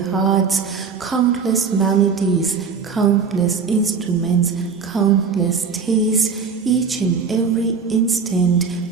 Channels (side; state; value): left; quieter; 5.6 dB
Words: hearts. Countless melodies, countless instruments, countless tastes, each and every instant.